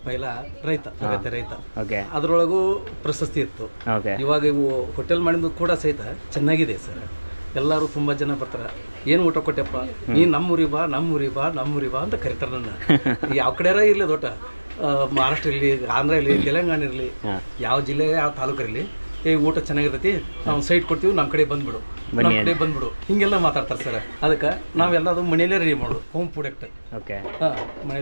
ಪೈಲ ರೈತ, ಅಗತ್ಯ ರೈತ. ಓಕೆ. ಅದರೊಳಗೂ ಪ್ರಶಸ್ತಿ ಇತ್ತು. ಓಕೆ. ಇವಾಗ ಇವು ಹೋಟೆಲ್ ಮಾಡಿದ್ದು ಕೂಡ ಸಹಿತ ಚೆನ್ನಾಗಿದೆ ಸರ್. ಎಲ್ಲರೂ ತುಂಬ ಜನ ಬರ್ತಾರೆ. ಏನು ಊಟ ಕೊಟ್ಟೆಪ್ಪ, ನೀನು ನಮ್ಮೂರಿ ಬಾ ನಮ್ಮೂರಿ ಬಾ ನಮ್ಮೂರಿ ಬಾ ಅಂತ ಕರಿತಾರೆ ನನ್ನ. ಯಾವ ಕಡೆಯಾರ ಇರಲಿ ದೊಡ್ಡ ಮಹಾರಾಷ್ಟ್ರ ಇರಲಿ, ಆಂಧ್ರ ಇರಲಿ, ತೆಲಂಗಾಣ ಇರಲಿ, ಯಾವ ಜಿಲ್ಲೆ ಯಾವ ತಾಲೂಕು ಇರಲಿ, ಊಟ ಚೆನ್ನಾಗಿರ್ತೈತಿ, ನಾವು ಸೈಟ್ ಕೊಡ್ತೀವಿ, ನಮ್ಮ ಕಡೆ ಬಂದ್ಬಿಡು, ನಮ್ಮ ಕಡೆ ಬಂದ್ಬಿಡು, ಹಿಂಗೆಲ್ಲ ಮಾತಾಡ್ತಾರೆ ಸರ್. ಅದಕ್ಕೆ ನಾವೆಲ್ಲದು ಮನೆಯಲ್ಲೇ ರೆಡಿ ಮಾಡೋದು, ಹೋಮ್ ಪ್ರಾಡಕ್ಟ್. ಓಕೆ.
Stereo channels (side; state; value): both; inverted; correlation -1.00